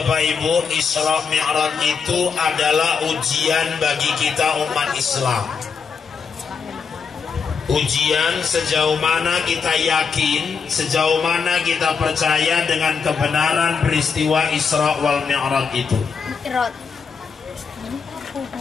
Ibu, Isra Mi'raj itu adalah ujian bagi kita umat Islam. Ujian sejauh mana kita yakin, sejauh mana kita percaya dengan kebenaran peristiwa Isra wal Mi'raj itu.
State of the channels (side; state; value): right; quieter; 5.9 dB